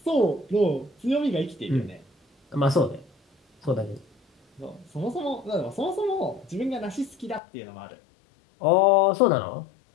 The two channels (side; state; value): right; drops out; at 7.4 s